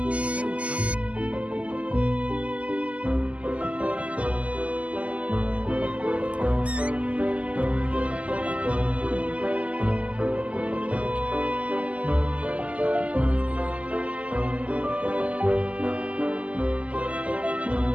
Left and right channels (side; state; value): left; late; 0.066 ms